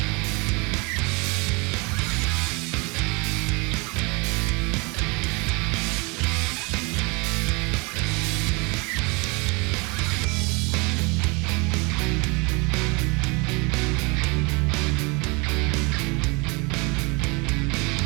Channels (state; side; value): quieter; left; 28.7 dB